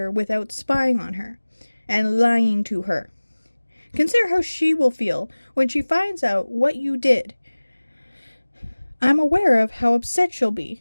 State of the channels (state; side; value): inverted; both; correlation -1.00